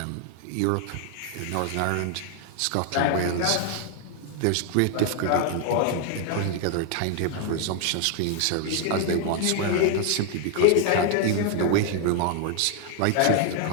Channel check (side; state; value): both; different; correlation 0.00